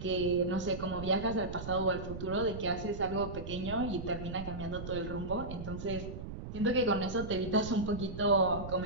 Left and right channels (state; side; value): noise; right; rumble, 8 dB below the sound